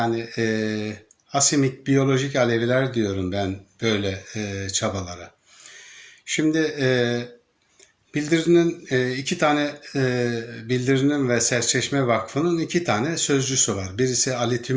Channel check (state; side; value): identical; both; correlation 1.00